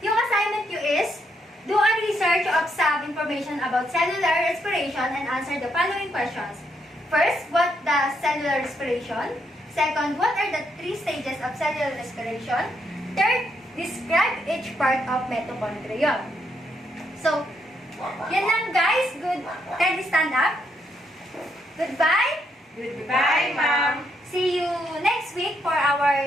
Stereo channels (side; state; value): both; normal; correlation 0.77